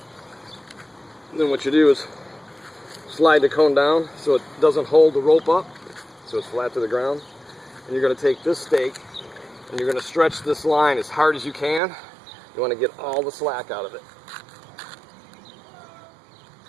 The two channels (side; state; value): left; drops out; at 11.8 s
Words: And then what you do is slide the cone down so it doesn't hold the rope up, so it's flat to the ground. And you're going to take this stake and you're going to stretch this line as hard as you can. You want to get all the slack out of it.